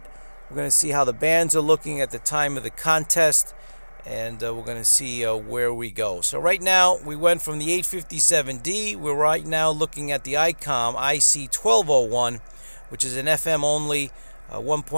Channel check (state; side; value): inverted; both; correlation -1.00